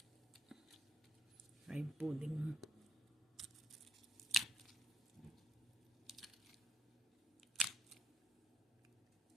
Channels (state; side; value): normal; both; correlation 0.70